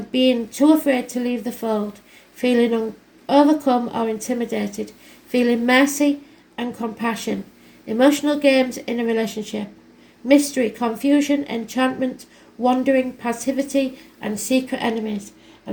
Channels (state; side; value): identical; both; correlation 1.00